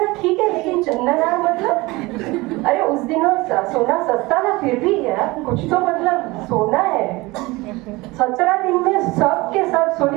ठीक है, लेकिन चंदन मतलब अरे उस दिनों सोना सस्ता था, फिर भी यार कुछ तो मतलब सोना है। 17 दिन में सब के सब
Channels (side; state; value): left; quieter; 22.1 dB